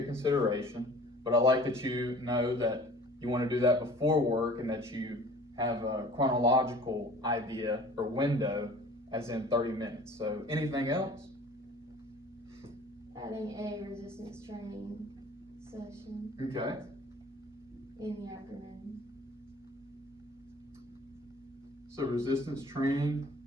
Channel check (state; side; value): normal; both; correlation 0.47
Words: consideration, but I like that you know that you want to do that before work and that you have a chronological idea or window as in 30 minutes. So anything else? Adding a resistance training session Okay. in the afternoon. So resistance training.